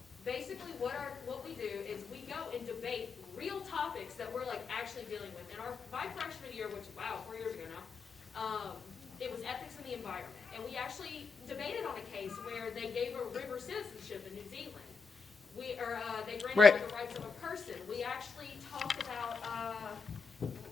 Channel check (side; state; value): right; quieter; 4.8 dB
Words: Basically, what we do is we go and debate real topics that we're like actually dealing with. And my freshman year, which wow, 4 years ago now, it was ethics in the environment, and we actually debated on a case where they gave a river citizenship in New Zealand. They granted Right. the rights of a person. We actually talked about